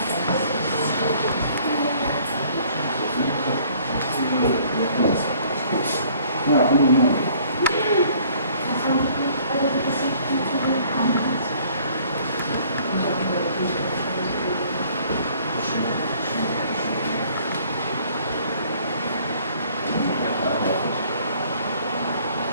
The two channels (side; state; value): both; inverted; correlation -0.58